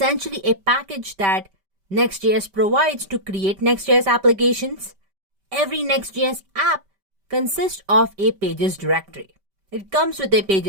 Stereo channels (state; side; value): late; left; 5.1 ms